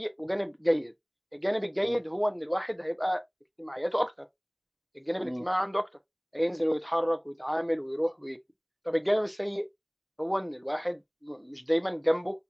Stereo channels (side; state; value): both; identical; correlation 1.00